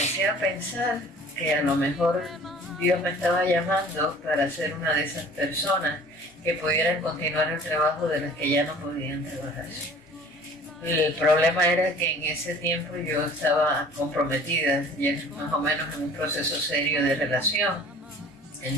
a pensar que a lo mejor Dios me estaba llamando para ser una de esas personas que pudieran continuar el trabajo de las que ya no podían trabajar. El problema era que en ese tiempo yo estaba comprometida, ya más o menos en un proceso serio de relación.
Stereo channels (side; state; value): both; normal; correlation 0.48